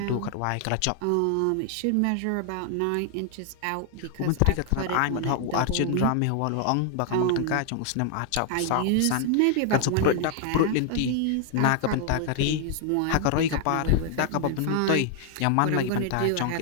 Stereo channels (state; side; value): different; both; correlation 0.00